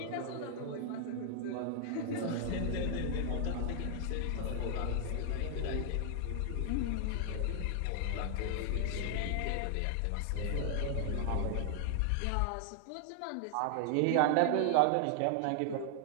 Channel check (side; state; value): both; different; correlation 0.00